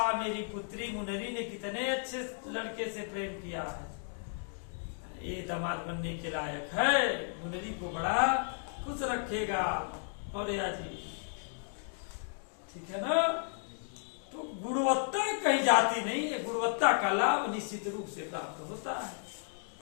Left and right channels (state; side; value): silent; right; 55 dB below the other